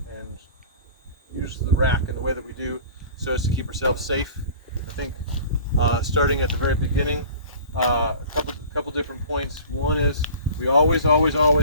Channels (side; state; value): both; inverted; correlation -0.42